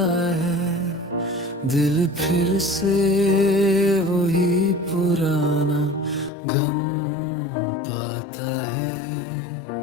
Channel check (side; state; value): right; drops out; at 6.3 s